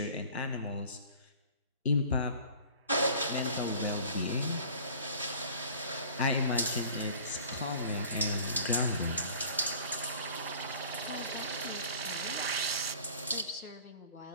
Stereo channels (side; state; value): both; inverted; correlation -0.46